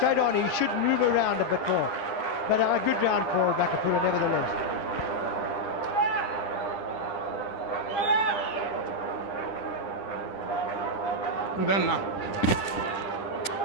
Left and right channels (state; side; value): late; right; 9.9 ms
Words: on, he should move around a bit more. But a good round for Makapula nevertheless. And then now,